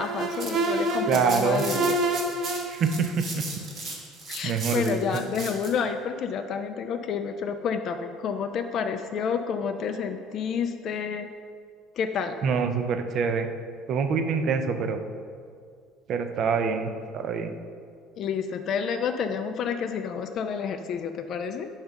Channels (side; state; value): both; normal; correlation 0.49